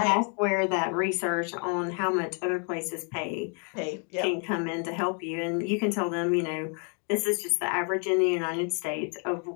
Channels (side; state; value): right; quieter; 39.7 dB